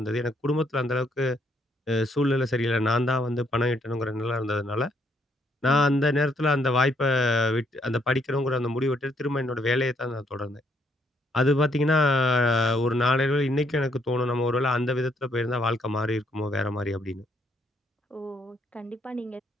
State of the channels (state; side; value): normal; both; correlation 0.71